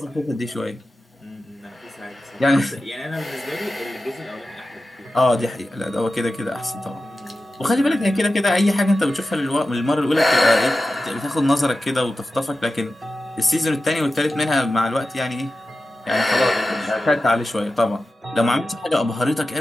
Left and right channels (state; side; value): normal; both; correlation 0.93